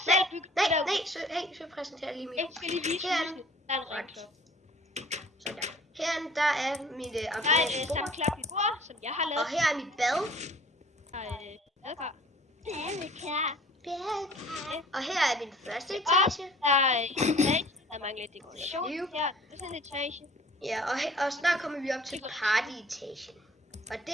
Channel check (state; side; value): normal; both; correlation 0.51